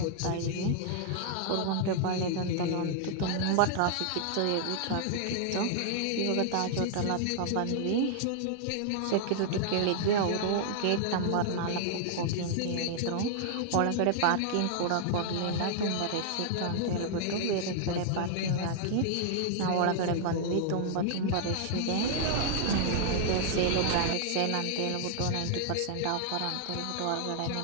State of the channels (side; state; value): both; different; correlation -0.01